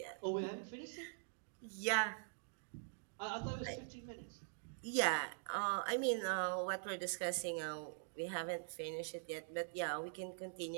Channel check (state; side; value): silent; left; digital silence